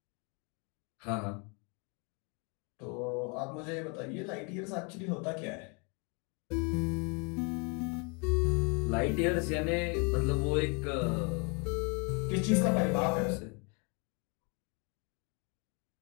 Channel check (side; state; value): right; quieter; 34.1 dB